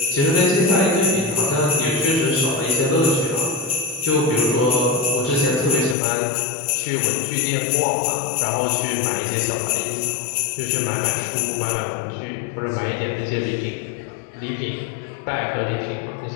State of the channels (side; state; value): right; drops out; at 6.0 s